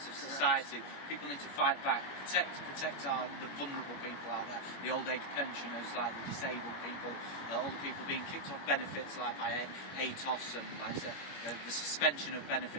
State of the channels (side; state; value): right; late; 21 ms